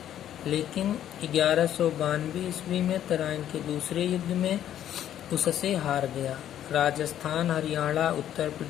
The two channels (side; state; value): right; quieter; 11.0 dB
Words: लेकिन 1192 ईस्वी में तराइन के दूसरे युद्ध में उससे हार गया। राजस्थान, हरियाणा, उत्तर